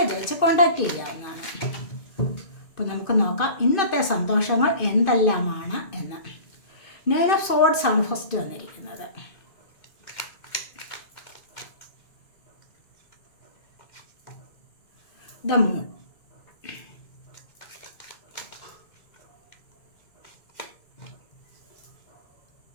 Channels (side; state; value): right; late; 2.5 ms